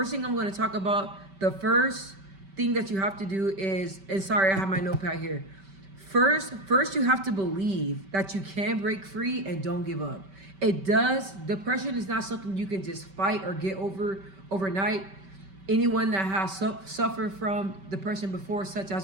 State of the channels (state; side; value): late; left; 5.2 ms